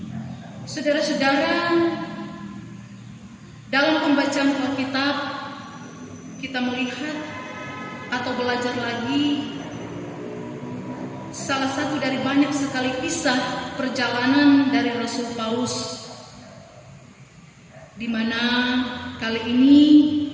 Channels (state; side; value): identical; both; correlation 1.00